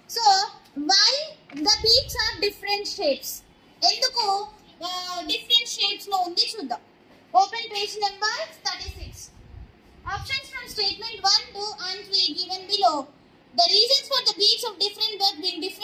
so why the beaks are different shapes? ఎందుకు డిఫరెంట్ షేప్స్ లో ఉంది చూద్దాం. Open page number 36. Options from statement 1, 2 and 3 given below. The reasons for the beaks of different birds being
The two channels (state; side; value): identical; both; correlation 1.00